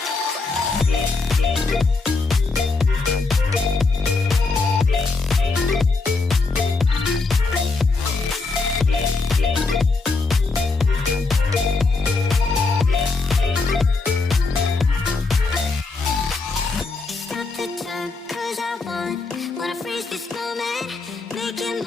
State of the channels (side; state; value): right; quieter; 3.9 dB